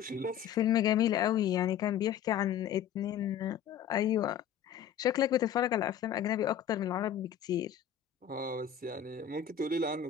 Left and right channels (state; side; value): quieter; right; 9.2 dB